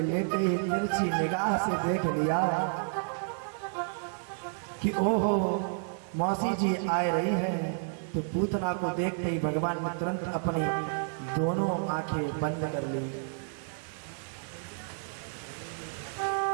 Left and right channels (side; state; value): left; silent; digital silence